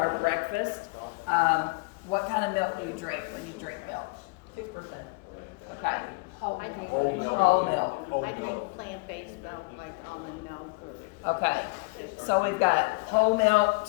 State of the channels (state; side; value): quieter; right; 29.1 dB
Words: breakfast. What kind of milk do you drink when you drink milk? 2%. Okay. I drink Whole milk. Whole milk. I drink plant-based milk, like almond milk or. Okay. So we've got whole milk,